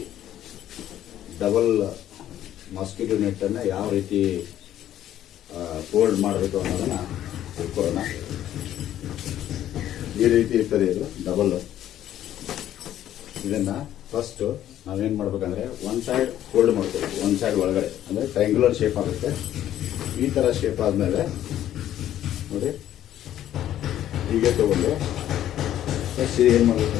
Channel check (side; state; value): right; quieter; 11.9 dB